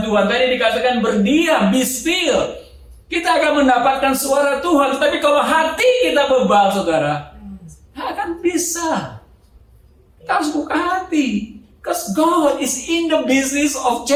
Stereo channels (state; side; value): identical; both; correlation 1.00